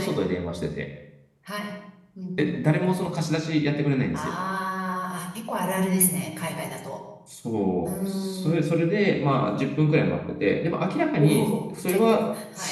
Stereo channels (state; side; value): identical; both; correlation 1.00